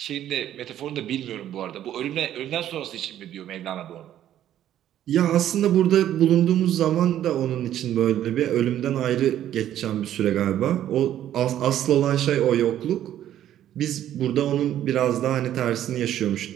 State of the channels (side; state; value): left; quieter; 11.6 dB